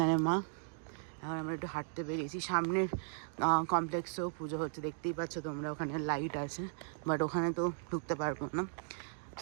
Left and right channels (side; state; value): left; silent; digital silence